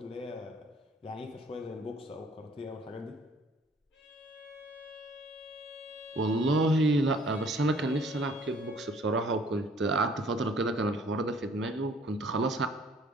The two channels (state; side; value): normal; both; correlation 0.57